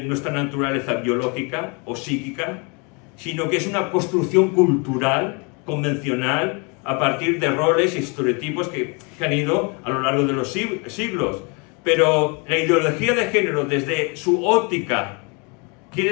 nuestra naturaleza biológica o psíquica, sino que es una construcción cultural, convencional, a partir de roles y estereotipos que han ido a lo largo de los siglos. Pero la ideología de género, desde su óptica,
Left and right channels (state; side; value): quieter; right; 32.4 dB